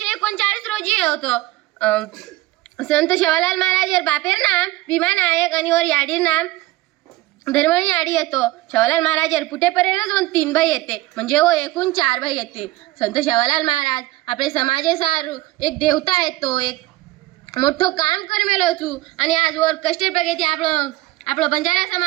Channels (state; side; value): quieter; left; 18.2 dB